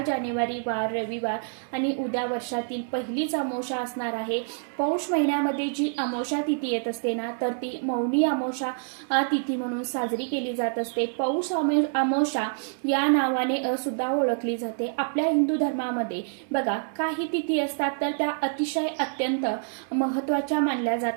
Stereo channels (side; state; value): left; silent; 60 dB below the other